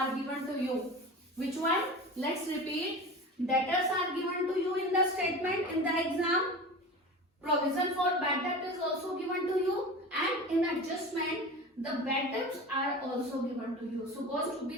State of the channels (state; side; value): normal; both; correlation 0.32